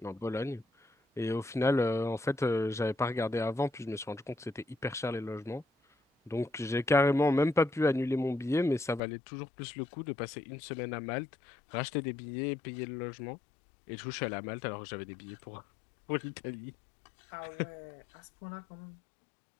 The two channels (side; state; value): right; drops out; at 9.0 s